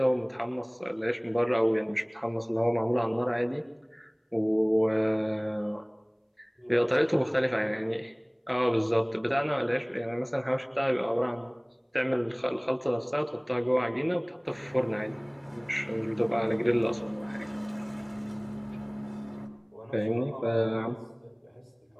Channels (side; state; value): both; identical; correlation 1.00